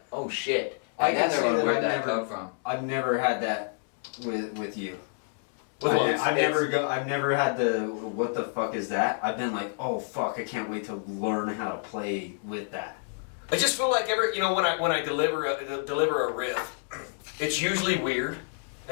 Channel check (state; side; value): silent; right; 59 dB below the other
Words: oh shit. I And can then say they're like, that where'd I've that never- come from? I've never had that with you. With what? I've never had the what the fuck is that? I've been like, oh fuck, I can't wait to learn how to play with that. I just feel like when I deliver a riff, it's usually weird,